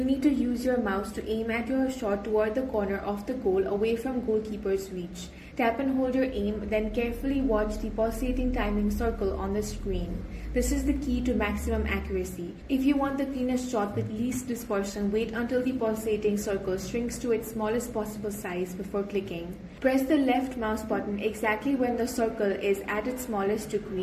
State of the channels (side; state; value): both; identical; correlation 1.00